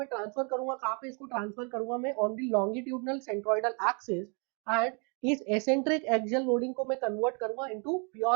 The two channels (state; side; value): quieter; left; 35.9 dB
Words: transfer करूंगा कहाँ पे, इसको transfer करूंगा मैं on the longitudinal centroidal axis and इस eccentric axial loading को मैं कन्वर्ट करूंगा into